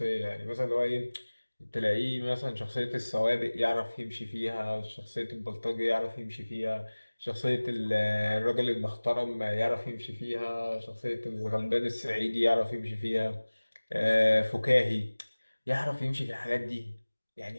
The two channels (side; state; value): both; inverted; correlation -1.00